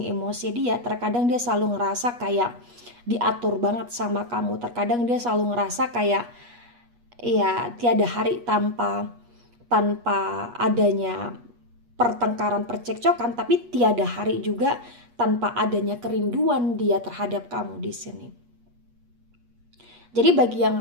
emosi dia. Terkadang dia selalu ngerasa kayak diatur banget sama kamu. Terkadang dia selalu ngerasa kayak ya tiada hari tanpa adanya pertengkaran, percekcokan, tapi tiada hari juga tanpa adanya kerinduan dia terhadap kamu di sini. Jadi bagi yang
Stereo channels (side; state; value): left; late; 8.3 ms